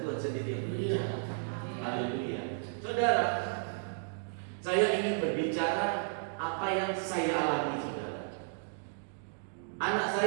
Tuhan sendiri yang berbicara. Haleluya. Saudara, saya ingin berbicara apa yang saya alami, saudara. Anak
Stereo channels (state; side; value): silent; left; digital silence